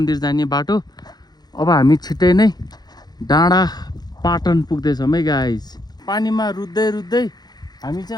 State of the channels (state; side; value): late; right; 0.19 ms